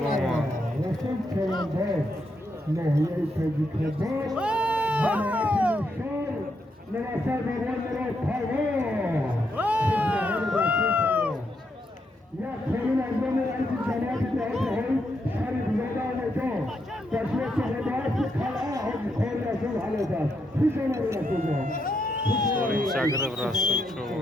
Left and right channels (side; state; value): both; normal; correlation 0.80